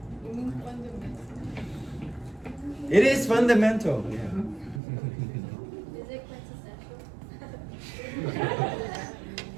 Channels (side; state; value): left; drops out; at 4.8 s